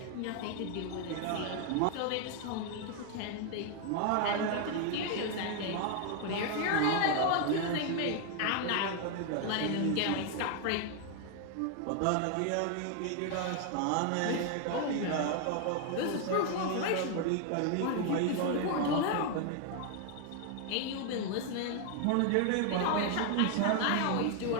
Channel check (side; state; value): both; different; correlation 0.01